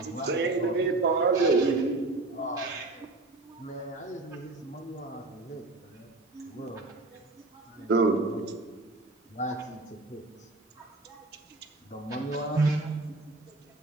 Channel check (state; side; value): quieter; left; 3.1 dB